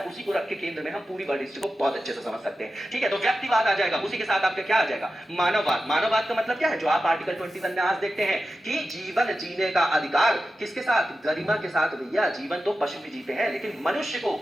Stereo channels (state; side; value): normal; both; correlation 0.92